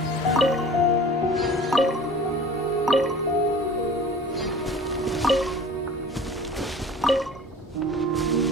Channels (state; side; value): normal; both; correlation 0.43